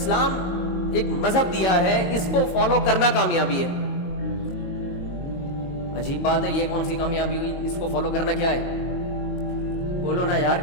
ایک مذہب دیا ہے اس کو فالو کرنا کامیابی ہے. عجیب بات ہے, یہ کون سی کامیابی ہوئی؟ اس کو فالو کرنا کیا ہے؟ بولو نا یار,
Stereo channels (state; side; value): late; right; 22 ms